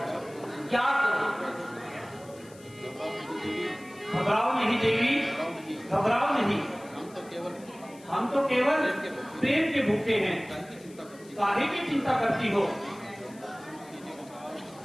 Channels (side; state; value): left; noise; hiss, 24 dB below the sound